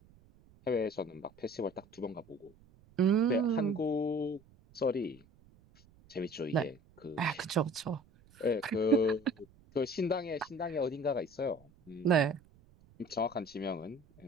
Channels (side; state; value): right; noise; rumble, 27 dB below the sound